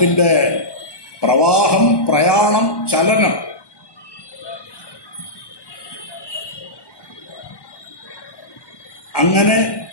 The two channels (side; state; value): right; late; 1.2 ms